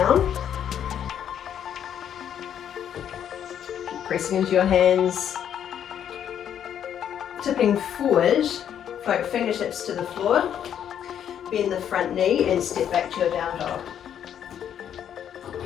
Keep pressing into your hands. Tipping forward, float fingertips to the floor. Bend the front knee and step back to your down dog.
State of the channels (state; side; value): quieter; right; 9.4 dB